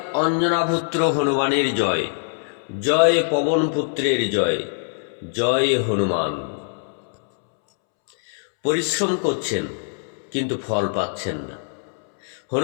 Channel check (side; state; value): right; silent; 64 dB below the other